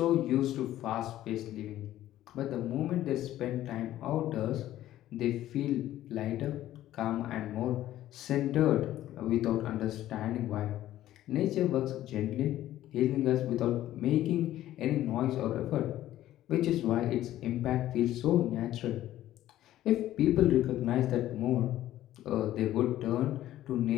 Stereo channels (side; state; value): right; quieter; 13.6 dB